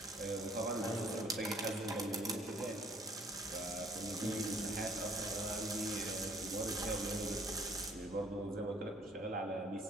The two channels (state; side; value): normal; both; correlation 0.60